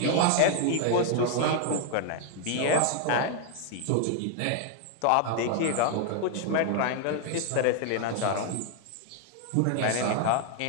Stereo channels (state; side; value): different; both; correlation 0.00